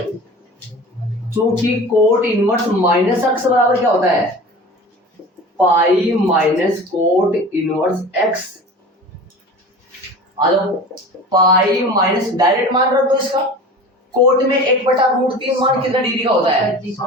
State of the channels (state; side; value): normal; both; correlation 0.37